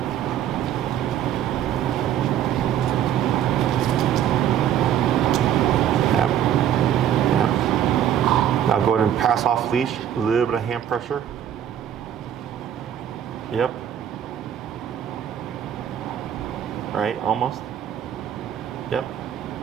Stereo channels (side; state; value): left; quieter; 10.1 dB